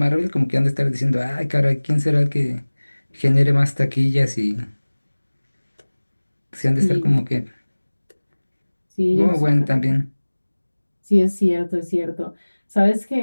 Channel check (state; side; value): inverted; both; correlation -1.00